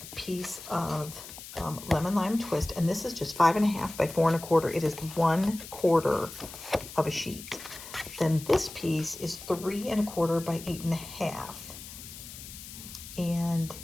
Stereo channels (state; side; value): noise; left; hiss, 13 dB below the sound